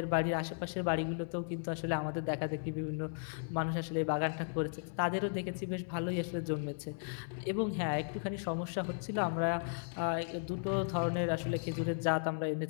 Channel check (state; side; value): silent; right; 54 dB below the other